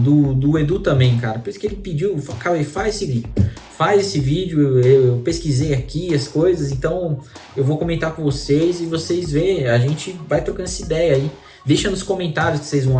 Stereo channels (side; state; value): both; identical; correlation 1.00